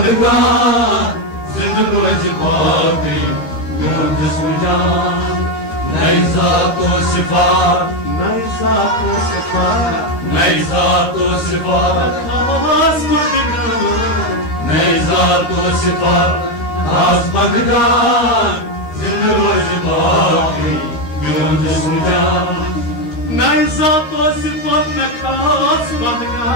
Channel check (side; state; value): right; late; 13 ms